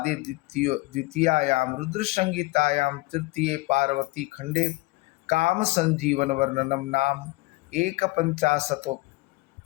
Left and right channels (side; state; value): right; quieter; 22.0 dB